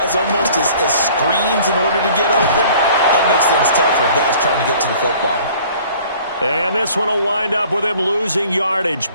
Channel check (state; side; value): inverted; both; correlation -0.51